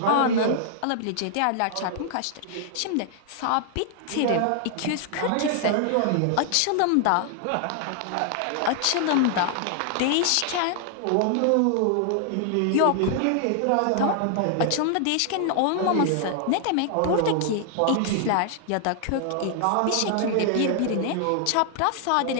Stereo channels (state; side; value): different; both; correlation 0.00